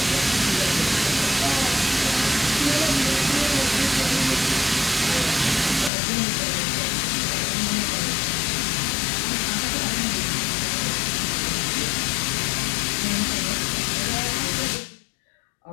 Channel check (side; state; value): right; drops out; at 5.9 s